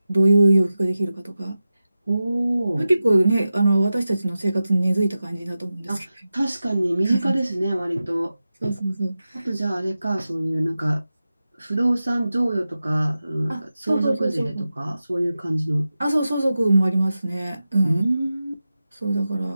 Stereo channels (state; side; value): inverted; both; correlation -0.93